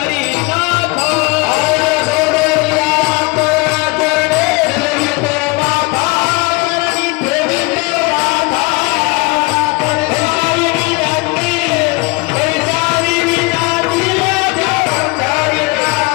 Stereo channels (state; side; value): quieter; right; 26.2 dB